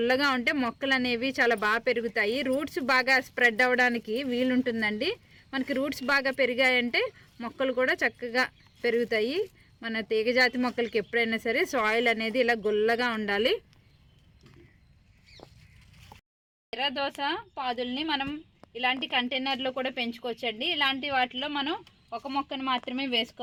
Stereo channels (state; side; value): identical; both; correlation 1.00